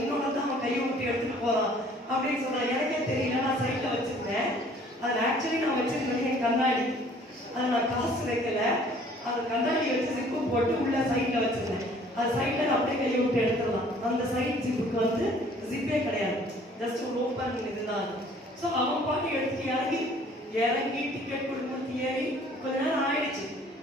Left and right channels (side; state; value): both; normal; correlation 0.55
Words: தான் அவன் கையை விட்டு எடுத்துட்டு போறான் அப்படின்னு சொல்றான். எனக்கே தெரியல, நான் சைட்ல வச்சிருந்தேன். அதில் ஆக்சுவலி நான் வச்சிருந்தேன் என் கண்ணாடி, அதை நான் காசு வைக்கல. அந்த கண்ணாடி வச்சு ஜிப்பு போட்டு உள்ள சைட்ல வச்சிருந்தேன். அது சைட்ல அப்படியே கையை விட்டு எடுத்துடலாம். அந்த சைட் ஜிப்புக்கு வந்து ஜிப்பே கிடையாது, ஜஸ்ட் ஒரு ஓப்பன் இதுதான். ஸோ அவன் பாட்டு எடுத்துட்டு இறங்கி டிக்கெட் கொடுத்து ஏறி கொஞ்ச நேரம் ஆயிடுச்சு.